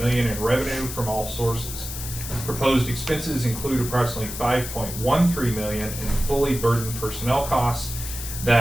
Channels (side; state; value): left; noise; hiss, 8 dB below the sound